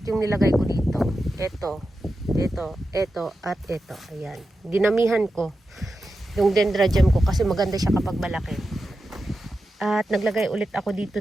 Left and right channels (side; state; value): both; normal; correlation 0.90